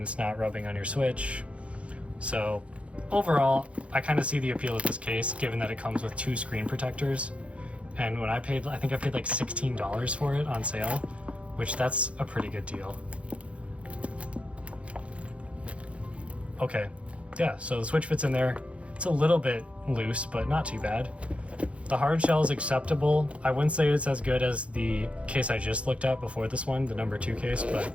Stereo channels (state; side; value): late; left; 0.062 ms